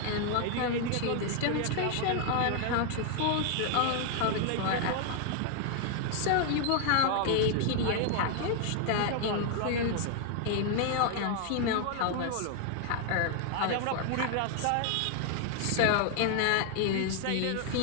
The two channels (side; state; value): both; different; correlation 0.00